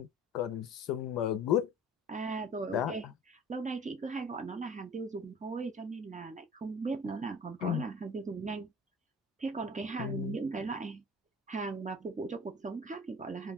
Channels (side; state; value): both; normal; correlation 0.44